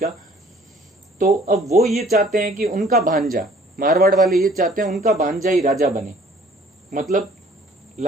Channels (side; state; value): both; normal; correlation 0.55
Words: तो अब वो ये चाहते हैं कि उनका भांजा, मारवाड़ वाले ये चाहते हैं उनका भांजा ही राजा बने। मतलब